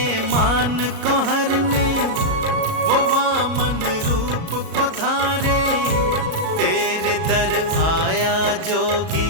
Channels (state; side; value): late; left; 37 ms